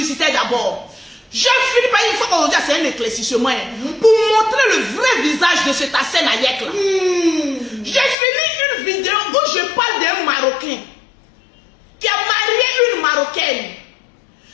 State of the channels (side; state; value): right; drops out; at 8.2 s